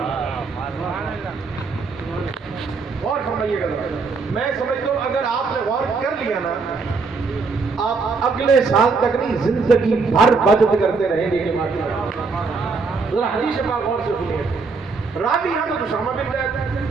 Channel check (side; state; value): left; quieter; 4.5 dB